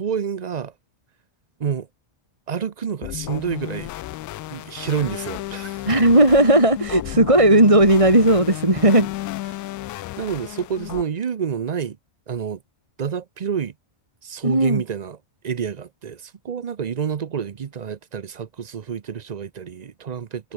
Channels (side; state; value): left; late; 1.9 ms